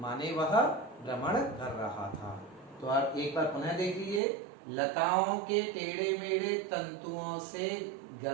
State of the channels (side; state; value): left; drops out; at 4.2 s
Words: वह भ्रमण कर रहा था। तो आप एक बार पुनः देख लीजिए, लताओं के टेढ़े मेढ़े तंतुओं से